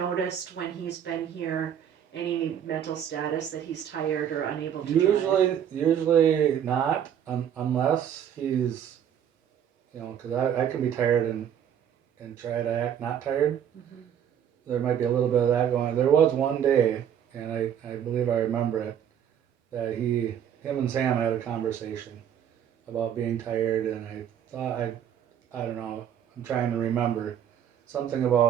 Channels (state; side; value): quieter; left; 9.2 dB